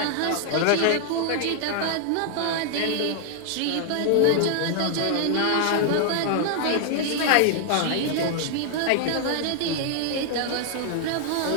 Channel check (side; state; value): both; different; correlation 0.00